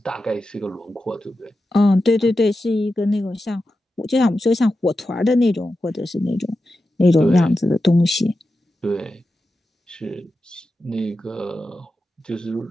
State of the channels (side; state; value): both; normal; correlation 0.91